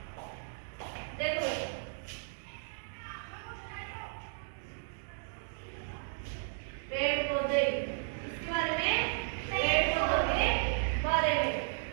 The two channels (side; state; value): left; silent; digital silence